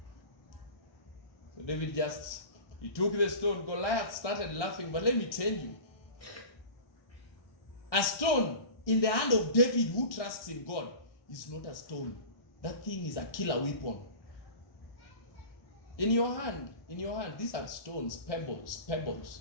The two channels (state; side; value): late; right; 1.6 ms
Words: So David he took the stone. Goliath started laughing, but let me tell you, a stone in the hand of David who trusts in God is not a stone. That thing is a killer weapon. In your hand, these are stones, pebbles.